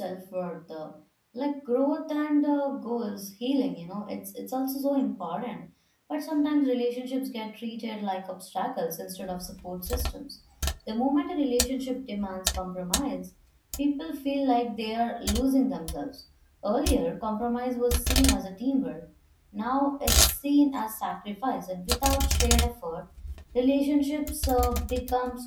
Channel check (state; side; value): identical; both; correlation 1.00